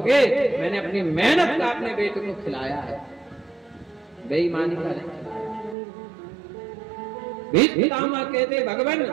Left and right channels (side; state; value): left; drops out; at 5.8 s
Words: मैंने अपनी मेहनत का अपने बेटे को खिलाया है, बेईमानी का नहीं खिलाया। भीष्म पितामह कहते, भगवान